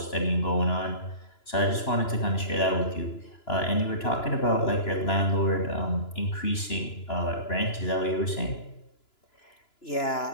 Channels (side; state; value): right; late; 2.9 ms